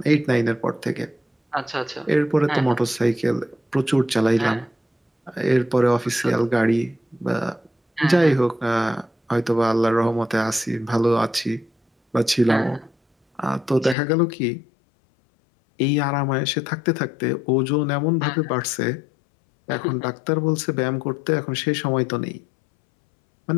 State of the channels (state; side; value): drops out; right; at 14.0 s